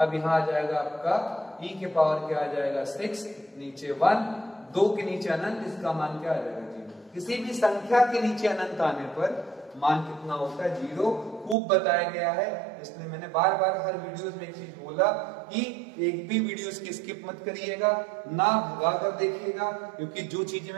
अब यहाँ आ जाएगा आपका e के पावर क्या आ जाएगा 6, नीचे 1, 2 के नीचे अनंत, इसका मान क्या आ जाएगा 0। किसी भी संख्या के नीचे अनंत आने पर मान कितना होता है 0, खूब बताया गया है, इसलिए मैंने बार बार हर वीडियोस में एक चीज बोला कि एक भी वीडियोस की स्किप मत करिएगा, ना भगा कर देखिएगा, क्योंकि जो चीजें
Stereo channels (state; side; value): drops out; left; at 11.6 s